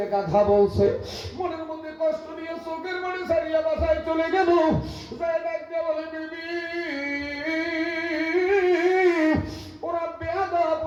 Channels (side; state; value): both; identical; correlation 1.00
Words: গাধা বলছে। মনের মধ্যে কষ্ট নিয়ে চোখের মানে সারিয়া বাসায় চলে গেল। ডাক দিয়ে বলে, বিবি ওরা বেয়াদব,